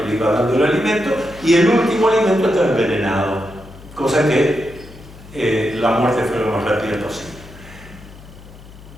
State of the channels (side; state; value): left; noise; hum, 19 dB below the sound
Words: le iba dando el alimento, y el último alimento estaba envenenado, cosa que la muerte fue lo más rápida posible.